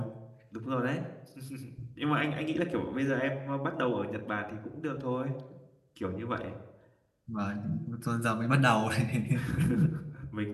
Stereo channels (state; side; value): identical; both; correlation 1.00